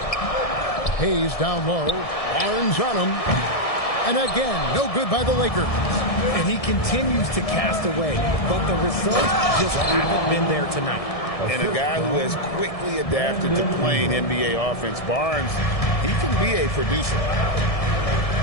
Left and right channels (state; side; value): late; right; 1.7 ms